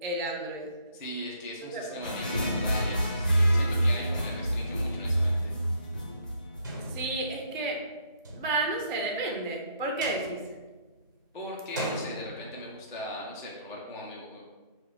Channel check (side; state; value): both; inverted; correlation -0.66